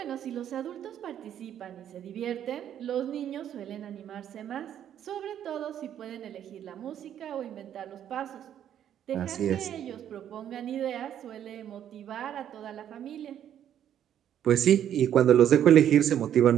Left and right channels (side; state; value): left; quieter; 10.2 dB